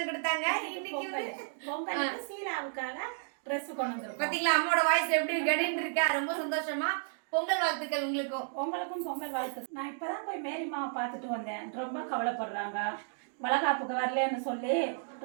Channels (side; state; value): left; silent; digital silence